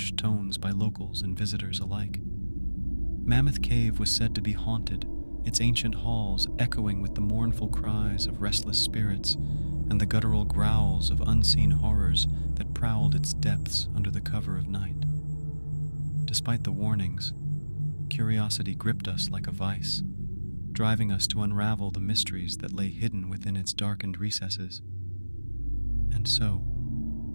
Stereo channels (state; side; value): inverted; both; correlation -1.00